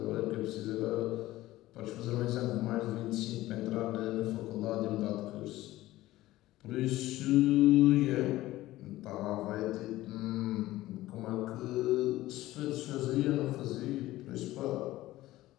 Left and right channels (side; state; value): right; quieter; 16.5 dB